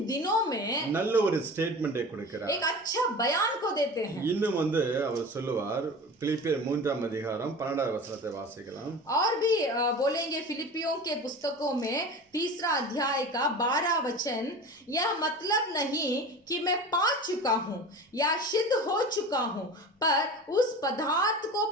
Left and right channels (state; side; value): normal; both; correlation 0.34